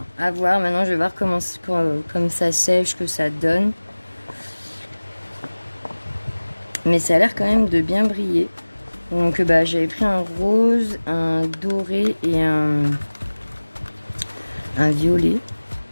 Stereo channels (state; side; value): inverted; both; correlation -1.00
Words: À voir, maintenant, je vais voir comment ça sèche, que ça donne. Mais ça a l'air quand même de bien briller. Donc, j'avais pris un rose, un doré et un violet.